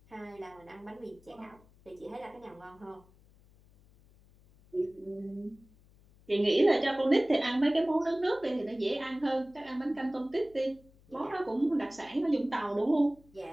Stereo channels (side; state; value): left; noise; hum, 27 dB below the sound